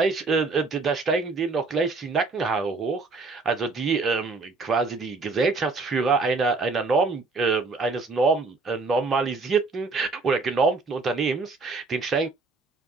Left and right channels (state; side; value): quieter; left; 3.9 dB